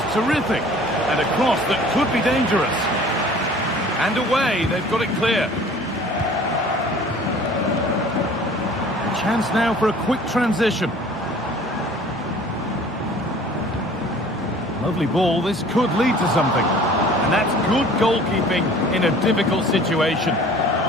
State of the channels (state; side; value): normal; both; correlation 0.49